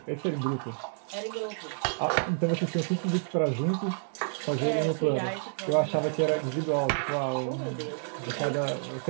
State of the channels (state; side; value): silent; left; digital silence